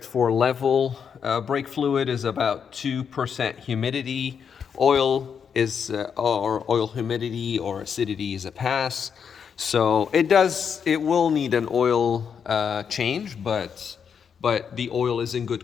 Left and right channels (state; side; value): quieter; right; 7.0 dB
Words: for level. Brake fluid is about 2% humidity. Oil is, or oil humidity or acidity is a pass. So it will need an oil change, but the oil is in